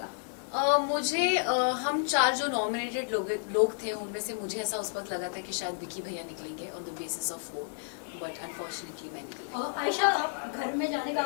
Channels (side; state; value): right; silent; digital silence